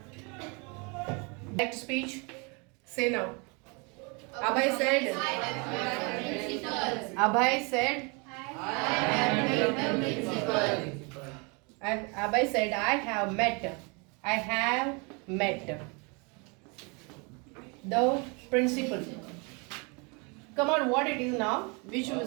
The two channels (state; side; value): quieter; left; 31.4 dB